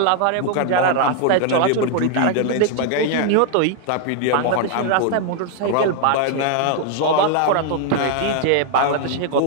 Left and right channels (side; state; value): both; different; correlation 0.00